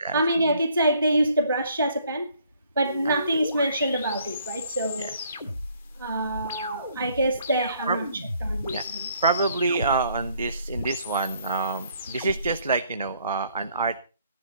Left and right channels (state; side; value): inverted; both; correlation -0.64